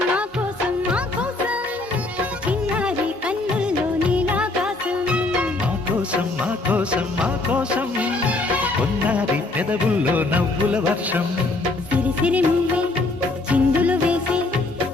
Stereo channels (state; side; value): quieter; right; 3.1 dB